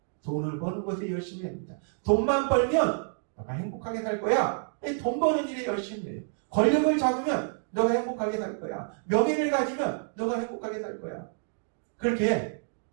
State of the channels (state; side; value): silent; left; digital silence